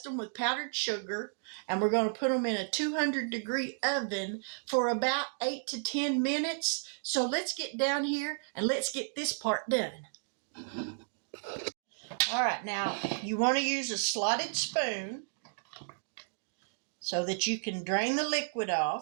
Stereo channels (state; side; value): silent; left; digital silence